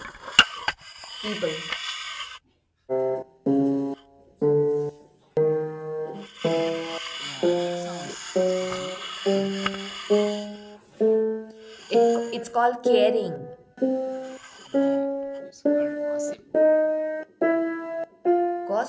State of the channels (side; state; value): both; identical; correlation 1.00